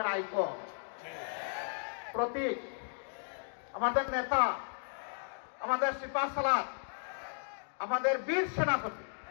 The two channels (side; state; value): right; silent; digital silence